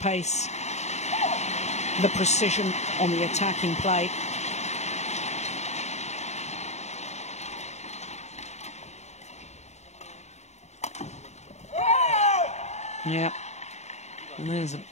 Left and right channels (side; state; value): right; late; 0.32 ms